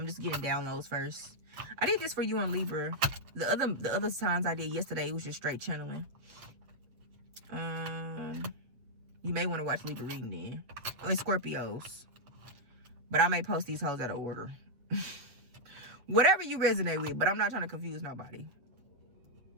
just getting downloads first. I did this for you on Libra. The other times I did yesterday, it was just straight channeling. You may want to watch Libra reading then. I mean, Scorpios. But I may post these hoes out of order. Whatever you resonate with, but I'm not trying to confuse nobody.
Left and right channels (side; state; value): left; late; 8.2 ms